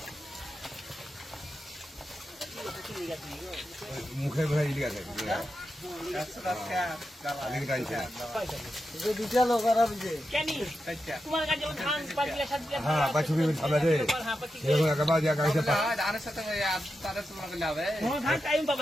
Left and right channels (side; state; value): both; normal; correlation 0.89